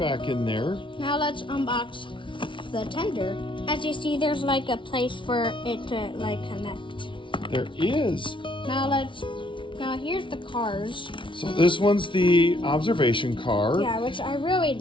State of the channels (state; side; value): late; right; 0.24 ms